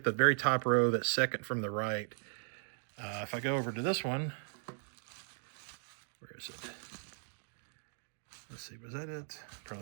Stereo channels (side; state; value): left; silent; digital silence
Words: the very top row, that second from the right, if I go over to this one, where is it? Let's see, was that it?